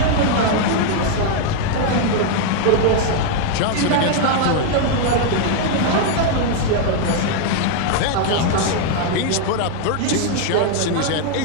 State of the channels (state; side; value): different; both; correlation 0.00